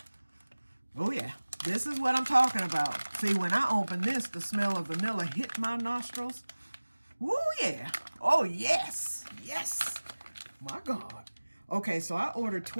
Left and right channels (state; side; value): inverted; both; correlation -1.00